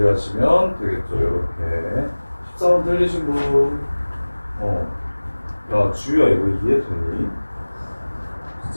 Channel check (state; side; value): inverted; both; correlation -1.00